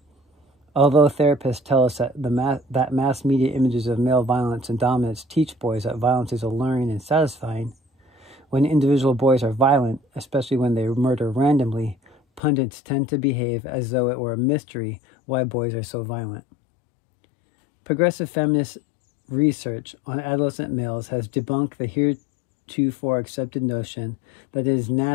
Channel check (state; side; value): drops out; right; at 12.4 s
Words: Although therapists tell us that mass media images of male violence and dominance teach boys that violence is alluring and satisfying, when individual boys are violent, especially when they murder randomly, pundits tend to behave as though it were a mystery why boys are so violent. Progressive feminist research on adolescent males has debunked the heretofore accepted notion that it is